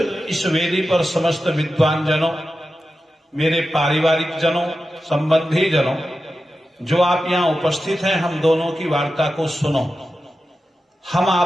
इस वेदी पर समस्त विद्वान जनों, मेरे पारिवारिक जनों, संबंधी जनों, जो आप यहां उपस्थित हैं, हम दोनों की वार्ता को सुनो। हम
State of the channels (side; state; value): both; normal; correlation 0.92